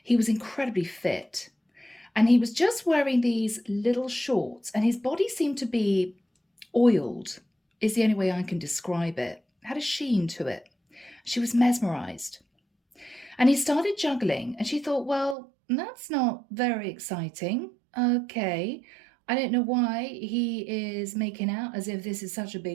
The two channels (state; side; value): drops out; left; at 15.4 s